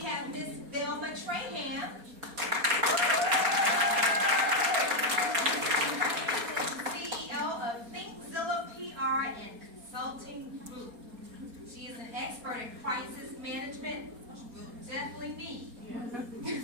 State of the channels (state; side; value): late; left; 4.2 ms